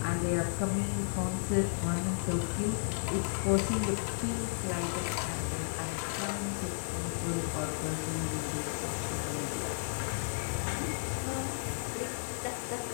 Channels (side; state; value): right; silent; digital silence